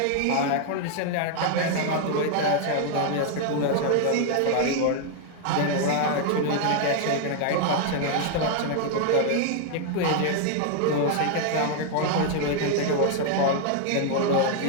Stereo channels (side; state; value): both; different; correlation 0.00